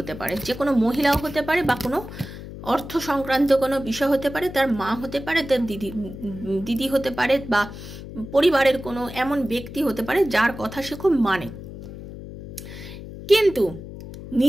পারে, যে কোনো মহিলাও হতে পারে, বা কোনো অর্থ সংক্রান্ত কোনো বিষয় হতে পারে, তার মা হতে পারে, তার দিদি হতে পারে, বা পরিবারের কোনো এমন ব্যক্তি হতে পারে যার কথা সে খুব মানে, কিন্তু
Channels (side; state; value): left; noise; hum, 12 dB below the sound